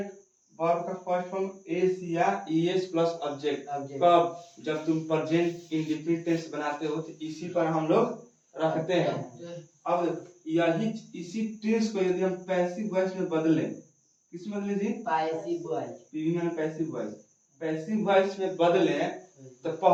वर्ब का फर्स्ट फॉर्म एस या ईएस प्लस ऑब्जेक्ट। कब, जब तुम प्रेजेंट इंडेफिनिट टेंस बनाते हो तो इसी पर हम लोग रखते हैं। अब यही इसी टेंस को यदि हम पैसिव वॉइस में बदलें, किस में बदले जी, पैसिव वॉइस, पीवी में पैसिव वॉइस, पैसिव वॉइस में बदलें तो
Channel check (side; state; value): both; identical; correlation 1.00